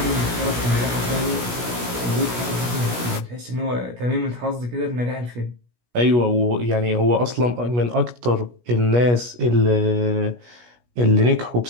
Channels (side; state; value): left; late; 17 ms